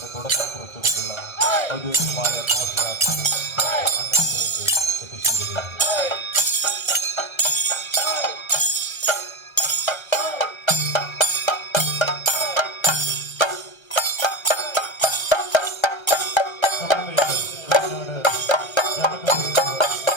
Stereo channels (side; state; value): right; late; 1.3 ms